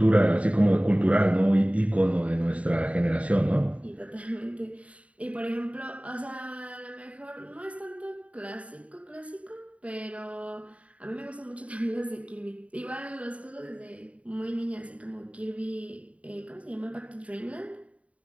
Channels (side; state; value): left; late; 0.066 ms